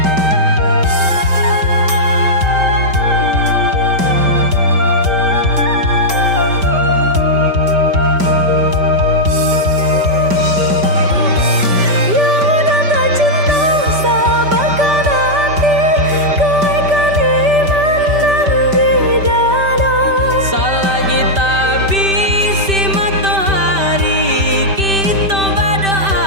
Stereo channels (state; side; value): late; left; 5.1 ms